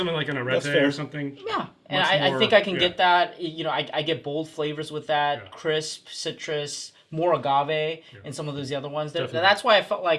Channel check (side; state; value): both; identical; correlation 1.00